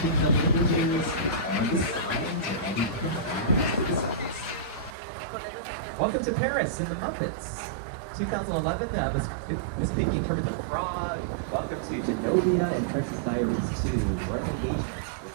the languages on the signs or any Welcome to Paris and the Muppets. 2011, Miss Piggy and Kermit the Frog. Welcome to Genovia and Princess Diaries 2, Royal Engagement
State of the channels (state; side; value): drops out; left; at 5.0 s